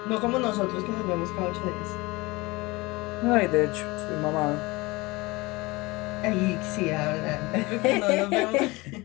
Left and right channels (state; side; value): quieter; right; 22.9 dB